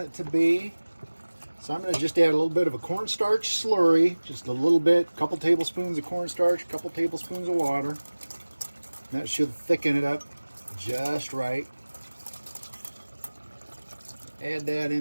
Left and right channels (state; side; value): inverted; both; correlation -1.00